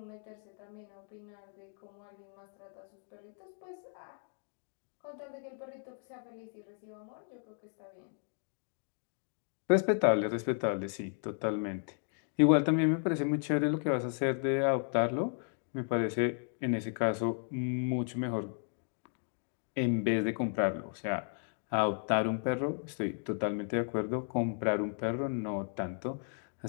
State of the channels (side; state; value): right; silent; 55 dB below the other